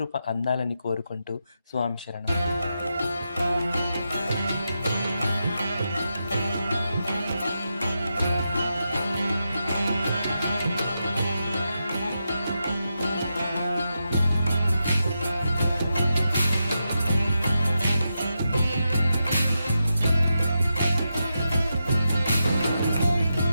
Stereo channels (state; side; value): inverted; both; correlation -0.87